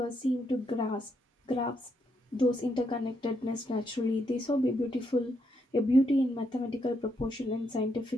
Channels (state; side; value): normal; both; correlation 0.78